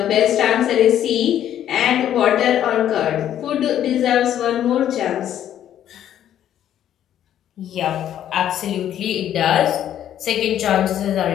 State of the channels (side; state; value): right; quieter; 10.9 dB